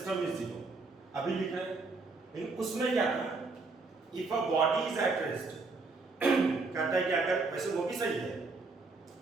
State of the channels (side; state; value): left; quieter; 3.8 dB